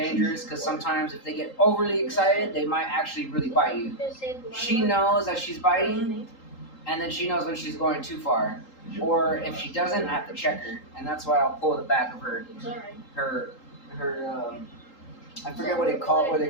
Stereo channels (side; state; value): right; late; 3.8 ms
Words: because sometimes if they get overly excited, they might actually really bite you. She knows that she's biting, and then she knows when she's going too far. Or if she doesn't, I have to check her, and that's why I'll pull the back of her I forget what they call